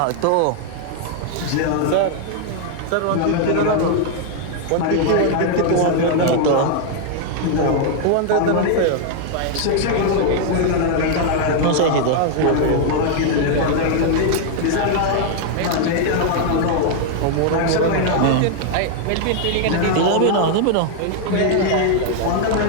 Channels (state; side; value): different; both; correlation 0.00